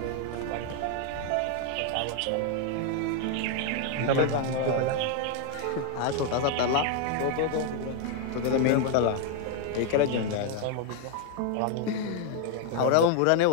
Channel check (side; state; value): both; different; correlation 0.00